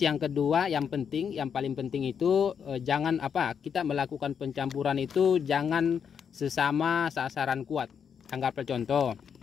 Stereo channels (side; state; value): right; quieter; 7.3 dB